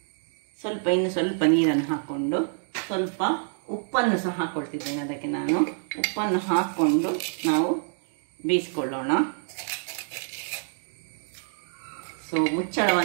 ಇನ್ನು ಸ್ವಲ್ಪ ನೀರನ್ನು ಹಾಕ್ಕೊಂಡು ಸ್ವಲ್ಪ ಉಪ್ಪನ್ನು ಸಹ ಹಾಕ್ಕೊಳ್ತಿದ್ದೇನೆ. ಅದಕ್ಕೆ ನಾನು ಉಪ್ಪನ್ನು ಹಾಕ್ಕೊಂಡು ನಾವು ಬೇಯಿಸ್ಕೊಳ್ಳೋಣ. ಸೊ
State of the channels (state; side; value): silent; left; digital silence